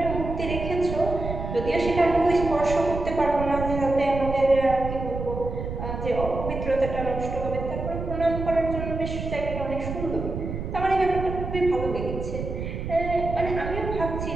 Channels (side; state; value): right; noise; rumble, 6 dB below the sound